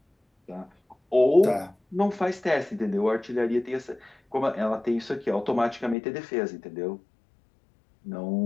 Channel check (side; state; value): right; drops out; at 6.0 s